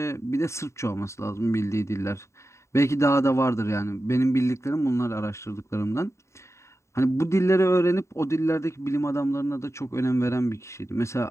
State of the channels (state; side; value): late; right; 0.14 ms